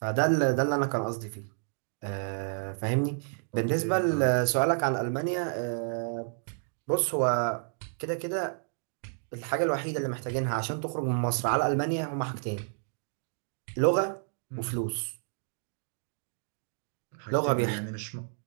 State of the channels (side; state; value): left; silent; digital silence